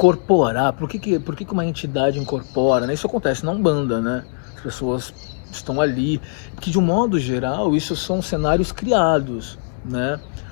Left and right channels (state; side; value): silent; right; digital silence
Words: Por que uma entidade incorpora, né? Isso acontece na Umbanda, né? As pessoas estão ali, porque de um modo geral isso são cenários criados, né?